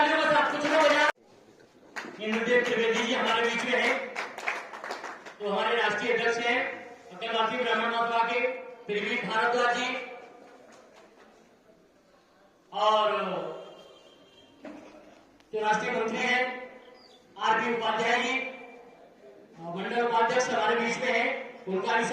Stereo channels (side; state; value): both; identical; correlation 1.00